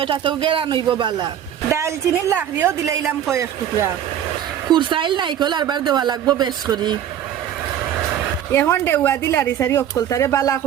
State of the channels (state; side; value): quieter; left; 10.2 dB